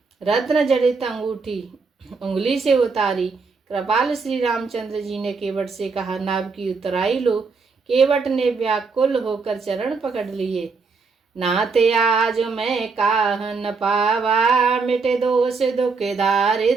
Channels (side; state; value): left; quieter; 4.6 dB